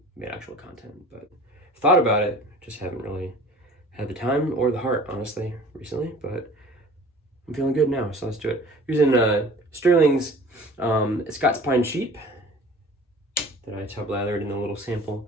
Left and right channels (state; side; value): normal; both; correlation 0.45